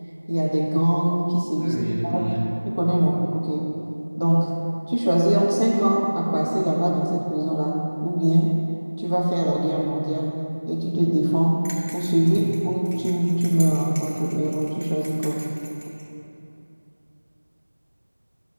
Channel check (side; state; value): both; inverted; correlation -1.00